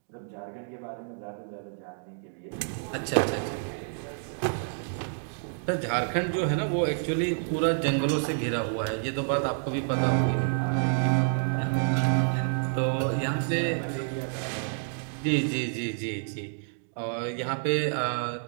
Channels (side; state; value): left; silent; digital silence